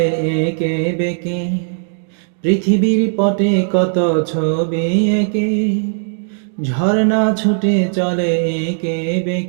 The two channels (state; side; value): silent; left; digital silence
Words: একে বেঁকে, পৃথিবীর পটে কত ছবি এঁকে। ঝর্ণা ছুটে চলে একে